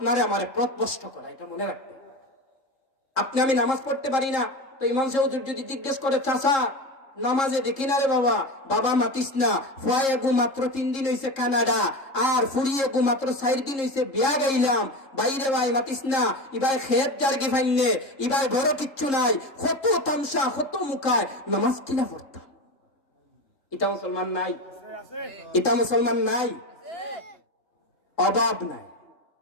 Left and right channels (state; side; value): late; right; 3.7 ms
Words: আমারে পথভ্রষ্ট করা, এটা মনে রাখবেন। আপনি আমি নামাজ পড়তে পারি না, তো ইমাম সাহেব যদি জিজ্ঞেস করে চাচা নামাজে দেখি না রে বাবা, বাবা মাতিস না, ফুয়ায়ে গু মাত্র 3 দিন হইছে কানাডা, আর ফুরিয়ে গু মাত্র 4 দিন হইছে বিয়া গাইলাম, বাইরে ভাই মাতিস না, ইবাই খেত জার্গি ফাইনে, ইবাই বড় কিচ্ছু নাই, কত তামসা কত মুখায় নামাজ কিনা পড়তাম। এটা মুসলমান নাই, এটা মুসলমান নাই, অভাব নাই,